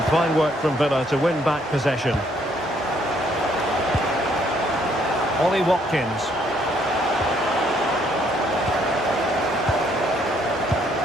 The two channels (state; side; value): normal; both; correlation 0.68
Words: Fine work from Villa to win back possession. Ollie Watkins.